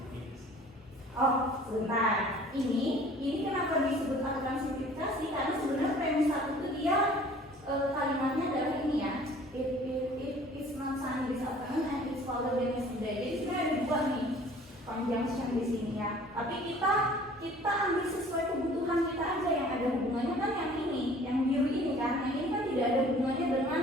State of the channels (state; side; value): normal; both; correlation 0.51